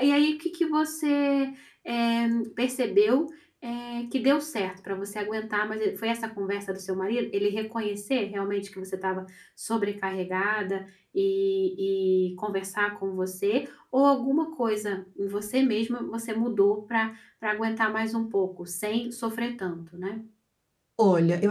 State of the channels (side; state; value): both; identical; correlation 1.00